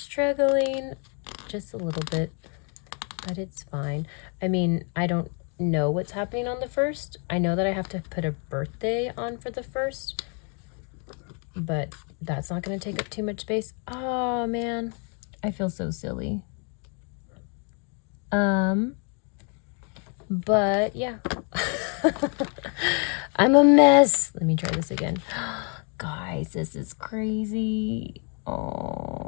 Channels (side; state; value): right; quieter; 38.3 dB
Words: just a little bit, but it's fine. I mean, I don't know what's happening on the 1st. I know that I have to put a birthday on for the 1st, but that's not going to take up too much space. Oh man, I feel so silly. But yeah. I'm a mess. Let me try this again. Guys, this is crazy.